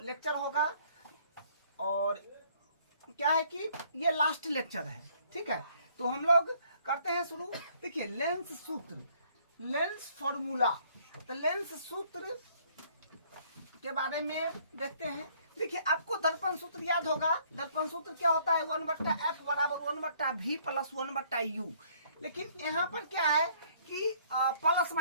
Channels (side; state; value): both; inverted; correlation -0.62